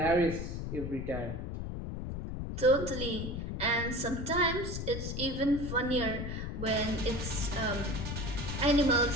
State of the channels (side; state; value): left; noise; rumble, 5 dB below the sound